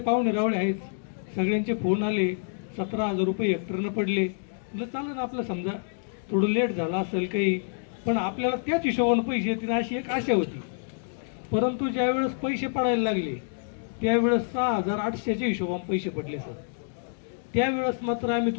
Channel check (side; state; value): right; silent; digital silence